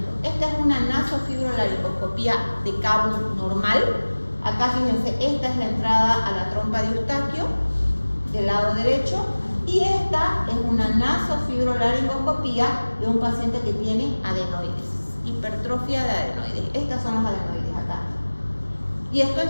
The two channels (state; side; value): inverted; both; correlation -1.00